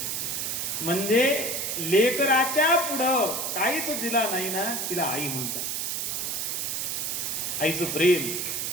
म्हणजे लेकराच्या पुढं काहीच जिला नाही ना, तिला आई म्हणतात. आईचं प्रेम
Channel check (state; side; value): noise; right; hiss, 1 dB below the sound